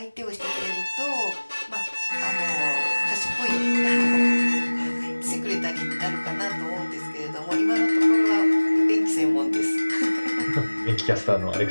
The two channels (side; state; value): both; inverted; correlation -1.00